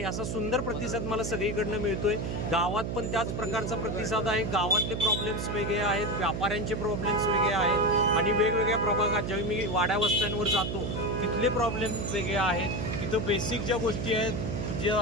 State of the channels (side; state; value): right; noise; hum, 3 dB below the sound